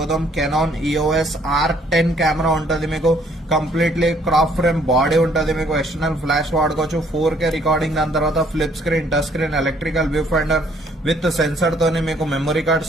కెనాన్ EOS R10 కెమెరా ఉంటది. మీకు కంప్లీట్లీ క్రాప్ ఫ్రేమ్ బాడీ ఉంటది. మీకు ఎక్స్టర్నల్ ఫ్లాష్ వాడుకోవచ్చు. 4K రికార్డింగ్, దాని తర్వాత flip screen, touch screen, electrical view finder with sensor తోని మీకు memory card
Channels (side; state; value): both; normal; correlation 0.64